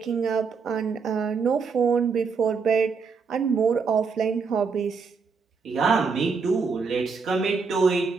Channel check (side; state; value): left; quieter; 5.2 dB